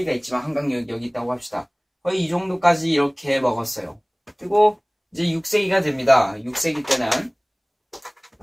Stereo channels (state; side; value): identical; both; correlation 1.00